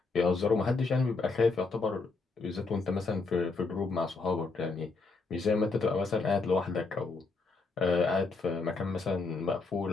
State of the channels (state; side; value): quieter; right; 4.0 dB